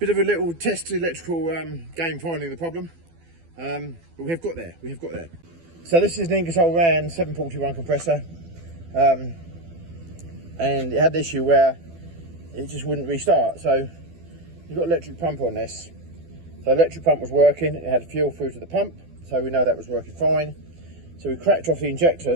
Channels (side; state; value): left; late; 12 ms